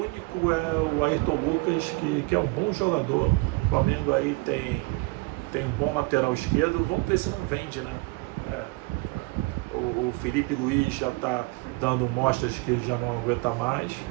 é o Ayrton Lucas, que é um bom jogador. O Flamengo aí tem um bom lateral esquerdo. Vamos ver se não vende, né? O Felipe Luiz já está dando mostras que ele já não aguenta mais.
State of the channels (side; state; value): left; quieter; 24.1 dB